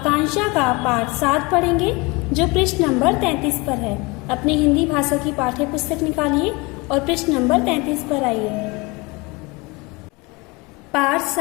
का पाठ 7 पढ़ेंगे, जो पृष्ठ नंबर 33 पर है। अपनी हिंदी भाषा की पाठ्य पुस्तक निकालिए और पृष्ठ नंबर 33 पर आइए। पाठ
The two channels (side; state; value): right; quieter; 25.9 dB